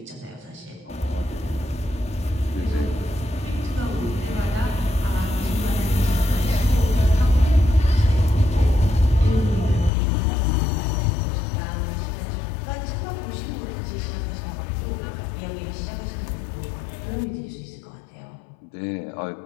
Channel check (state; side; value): drops out; right; at 9.9 s